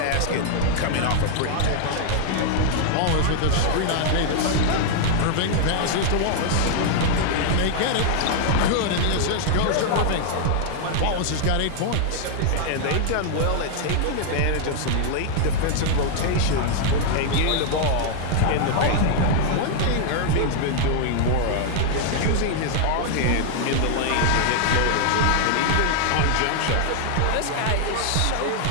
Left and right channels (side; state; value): both; different; correlation 0.00